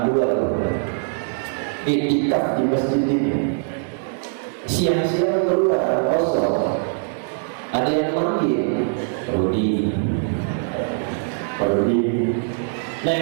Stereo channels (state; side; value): silent; left; digital silence